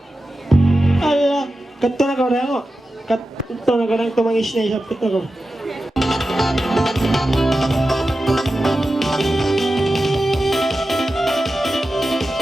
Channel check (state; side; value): normal; both; correlation 0.92